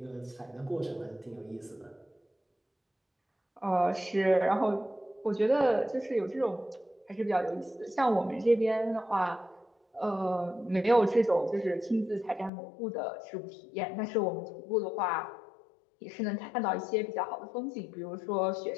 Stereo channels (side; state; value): right; drops out; at 12.5 s